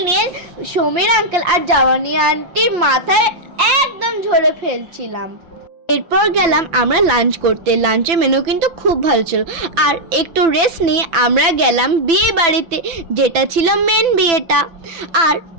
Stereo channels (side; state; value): left; late; 5.9 ms